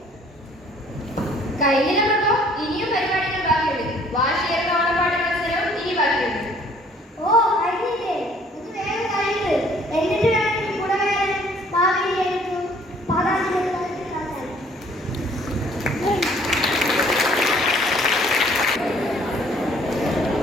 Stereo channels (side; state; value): both; normal; correlation 0.58